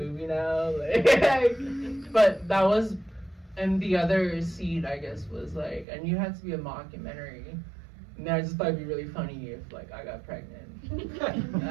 now. Like, but that was, and the other seed I guess was like, and you had to be a mockumentary. And I just thought it'd be really funny if like I got pregnant. And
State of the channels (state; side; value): drops out; left; at 5.9 s